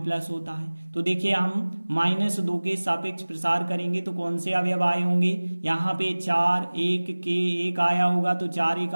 होता है। तो देखिए हम -2 के सापेक्ष प्रसार करेंगे तो कौन से अवयव आए होंगे, यहाँ पे 4 1 के 1 आया होगा, तो 4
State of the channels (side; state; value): both; inverted; correlation -1.00